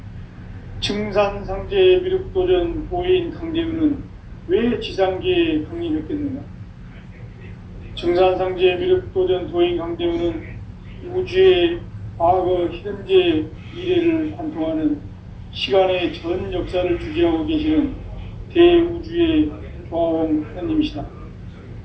증산상제 미륵도전 보인 강대문은 왜 지상계에 강림했겠는가? 증산상제 미륵도전 도인 강대문은 우주의 과거, 현재, 미래를 관통하는 시간의 전 역사를 주재하고 계시는 대우주의 조화원 하나님이시다.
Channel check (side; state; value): both; identical; correlation 1.00